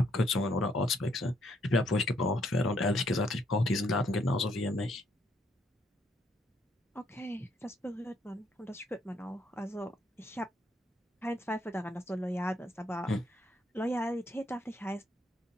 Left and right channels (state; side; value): normal; both; correlation 0.71